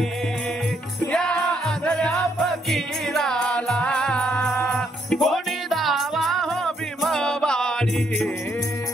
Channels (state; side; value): normal; both; correlation 0.73